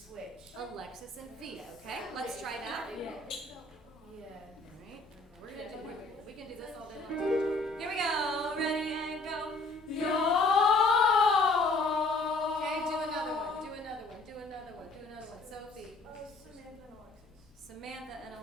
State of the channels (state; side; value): quieter; right; 3.1 dB